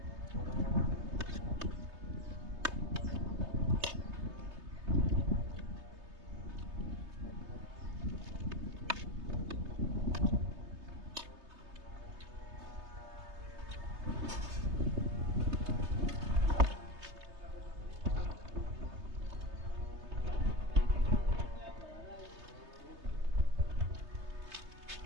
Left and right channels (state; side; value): late; left; 3.3 ms